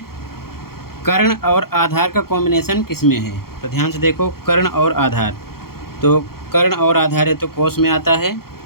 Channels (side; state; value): right; late; 0.94 ms